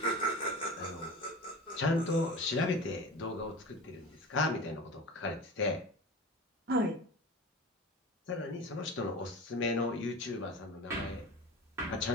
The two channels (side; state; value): both; normal; correlation 0.32